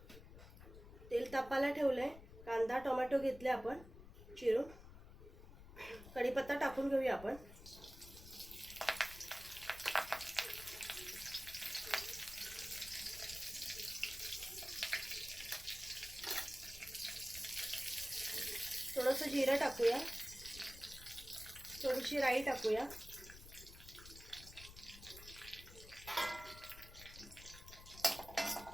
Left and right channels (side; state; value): left; noise; rumble, 16 dB below the sound